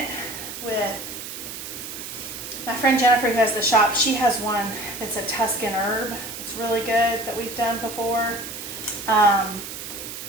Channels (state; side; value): noise; right; hiss, 9 dB below the sound